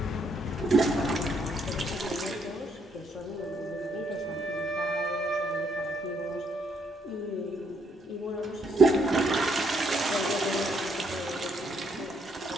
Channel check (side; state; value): both; normal; correlation 0.72